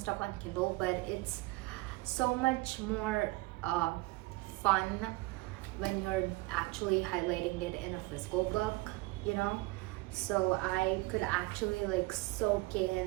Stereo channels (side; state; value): left; quieter; 22.4 dB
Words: on Kindle, but it's so much more fun when you're actually highlighting it in a physical book, you know? So I could actually like soak